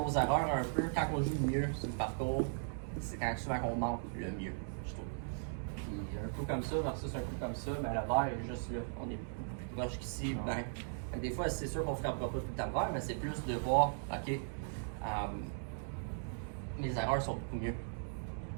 erreurs un peu, quand on joue mieux sur le parcours, c'est quand souvent qu'on manque le mieux, je trouve. Puis un coup comme ça versus un coup comme ça, ben, le verre est juste là. On est plus proche qu'ici. Ben, des fois, c'est sûr qu'on ne frappera pas tout le temps le verre, mais c'est plus de voir, OK, mes erreurs sont beaucoup mieux.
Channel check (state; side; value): silent; left; digital silence